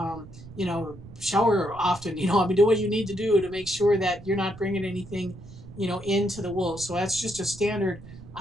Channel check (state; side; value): noise; right; rumble, 17 dB below the sound